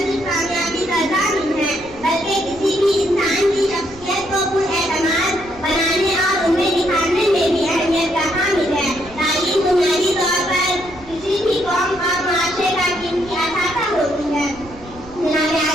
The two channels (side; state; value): right; noise; rumble, 20 dB below the sound